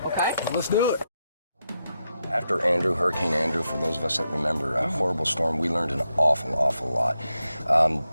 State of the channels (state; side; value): inverted; both; correlation -0.86